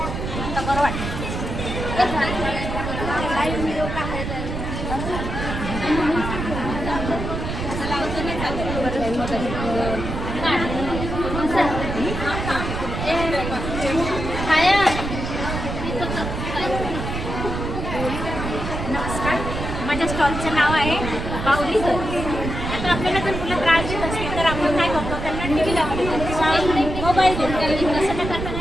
नमस्कार, माझ्या स्टॉलचं नाव आहे बाहुली घर. आता आपल्याला जर मुलं त्रास देत असतील तर आपण काय करतो, त्यांना टी व्ही लावतो, मोबाईल देतो. तसं न करता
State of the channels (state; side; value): noise; right; rumble, 5 dB below the sound